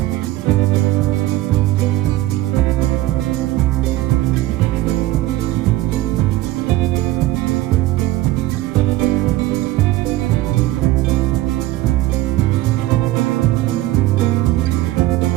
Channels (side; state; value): left; quieter; 16.3 dB